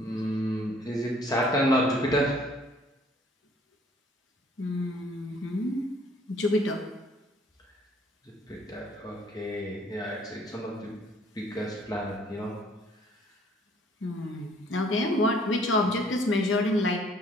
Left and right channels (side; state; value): both; normal; correlation 0.59